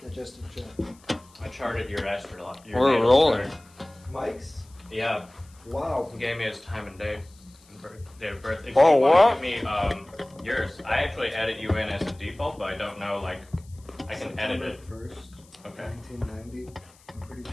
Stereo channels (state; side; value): noise; left; hiss, 28 dB below the sound